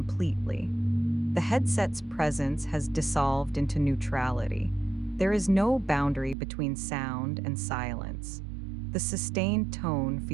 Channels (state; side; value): drops out; left; at 6.4 s